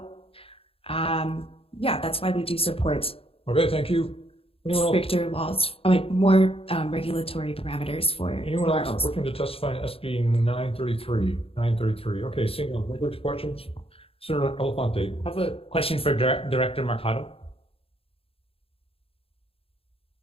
that's why we do support. Okay, thank you. Stricter laws, more regulatory parameters for anyone else looking to testify in SB 933? Okay, seeing no language questions. Senator Elefante. I have a question for Director Mercado.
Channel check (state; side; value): late; right; 0.27 ms